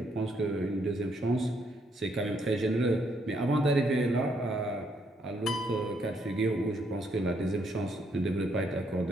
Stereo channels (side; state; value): both; normal; correlation 0.73